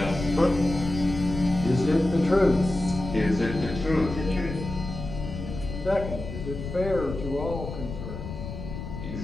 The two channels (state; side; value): noise; left; rumble, 8 dB below the sound